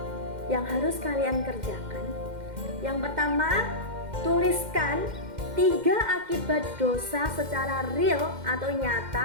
yang harus kalian kerjakan. Yang pertama, tuliskan 3 akibat dosa secara real atau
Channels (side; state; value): left; late; 2.1 ms